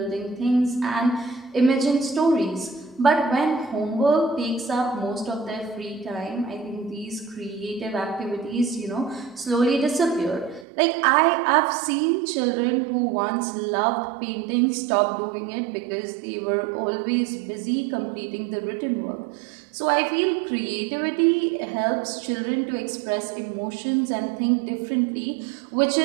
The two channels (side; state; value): left; drops out; at 10.7 s